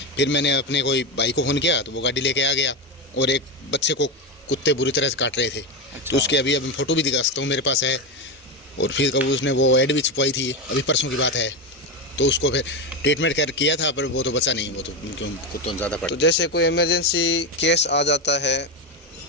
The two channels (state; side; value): normal; both; correlation 0.14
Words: फिर मैंने अपने कोई भाई को फ़ोन किया, तो वो गाड़ी लेके आ गया, और एक बच्चे को कुत्ते बुरी तरह से काट रहे थे। तो उसके अभी फ़ोटो भी दिखा सकता हूँ, मेरे पास है। और फिर कब उसने वो ऐड भी छुपवाई थी, अभी परसों की बात है। तो उसको फिर ट्रीटमेंट किया था, पर वो तो बचा नहीं, वो तो क्यों कुत्तों ज़्यादा पड़ा। तो जैसे कोई इमरजेंसी केस आ जाता है